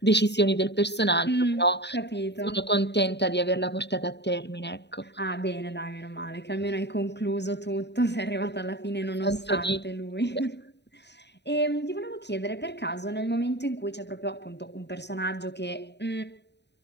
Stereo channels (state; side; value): late; right; 0.50 ms